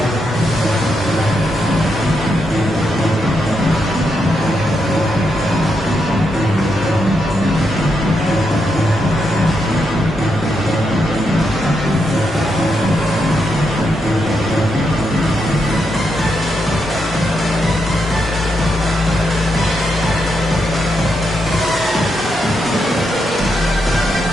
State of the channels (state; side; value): normal; both; correlation 0.82